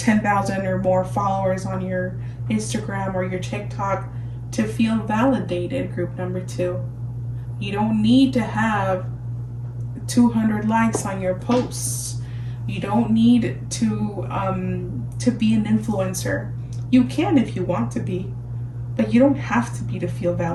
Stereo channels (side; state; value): both; identical; correlation 1.00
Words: or more followers on your Instagram or your TikTok to feel validated. Group number 2, you don't need to have 200 likes on your posts. You don't need to be an influencer. You can if you want to be, but you don't have to be to feel